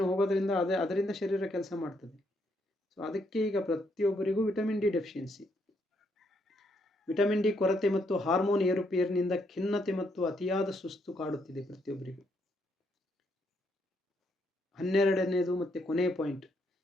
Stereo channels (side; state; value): both; normal; correlation 0.75